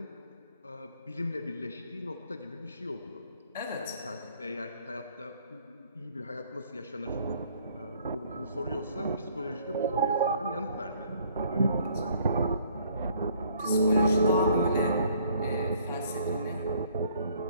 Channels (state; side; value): inverted; both; correlation -0.61